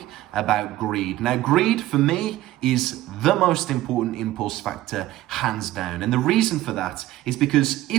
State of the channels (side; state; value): left; quieter; 15.5 dB